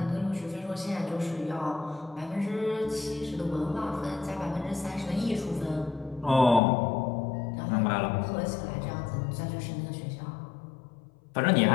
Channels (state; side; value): drops out; right; at 6.6 s